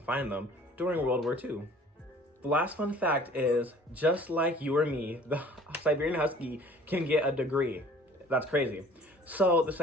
find them during World War II. The last fun fact is, just like you or me, the Siberian Husky can get a degree. That's crazy. So the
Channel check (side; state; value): both; normal; correlation 0.51